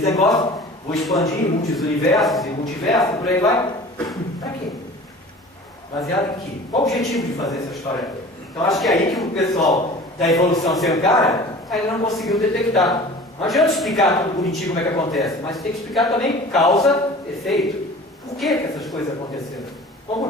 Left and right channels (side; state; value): both; normal; correlation 0.42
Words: negócio, vou expandir em muitos universos e multiversos, por aí vai. Para quê? Baseado em quê? Qual o objetivo de fazer essa história? Então acho que é aí que o pessoal da evolução sem cara ainda não conseguiu detectar. Não adianta explicar tudo bonitinho como é que acontece, mas tem que explicar também causa, efeito. Por que essas coisas aconteceram? Qual o